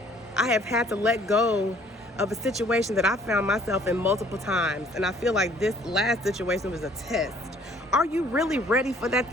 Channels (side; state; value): both; normal; correlation 0.58